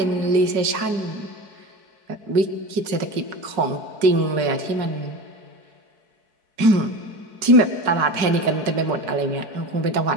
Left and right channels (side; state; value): left; late; 4.7 ms